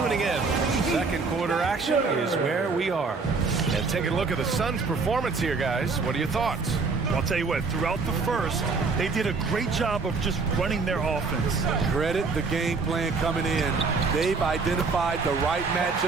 in, second quarter action is where we are. And taking a look at the Suns' performance here, guys. What are your thoughts? I'll tell you what, throughout the first, they did a great job of just running their offense. Credit the game plan coming in. They've identified the right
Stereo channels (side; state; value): left; quieter; 4.4 dB